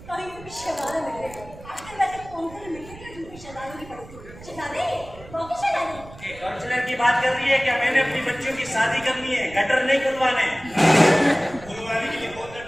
कहीं भी शहजादे मिल रहे हैं। आजकल वैसे कौन से मिलते हैं जिनकी शहजादे की पड़ती है? शहजादे, बाकी शहजादे। ये काउंसलर की बात कर रही है क्या? मैंने अपनी बच्चियों की शादी करनी है, गटर नहीं खुलवाने। खुलवाने के लिए कौन सा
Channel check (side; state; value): right; noise; rumble, 18 dB below the sound